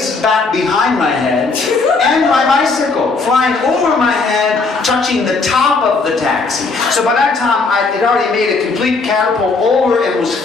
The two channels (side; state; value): right; quieter; 4.0 dB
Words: back behind my head and my bicycle flying over my head, touching the top of the taxi. So by that time, it already made a complete catapult over and was